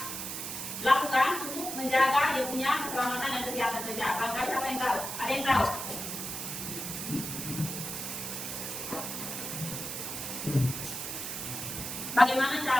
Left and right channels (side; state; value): right; noise; hiss, 5 dB below the sound